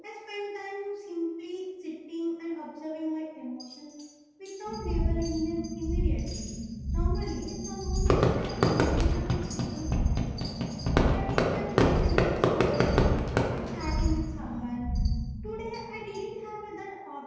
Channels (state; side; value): identical; both; correlation 1.00